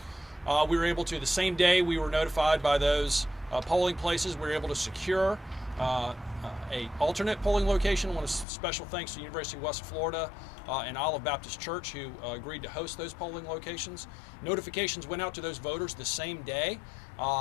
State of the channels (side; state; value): right; drops out; at 8.5 s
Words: We were able to, the same day we were notified by those polling places, we were able to secure a alternate polling location. I want to special thanks to the University of West Florida and Olive Baptist Church who agreed to host those polling locations. Notifications went out to those voters the same day,